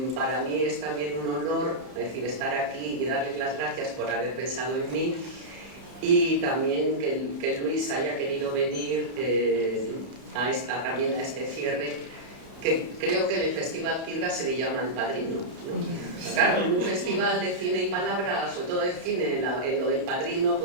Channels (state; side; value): late; left; 31 ms